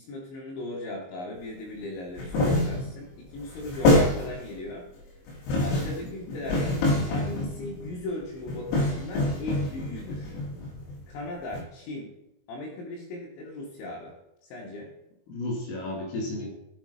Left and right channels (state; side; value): late; right; 22 ms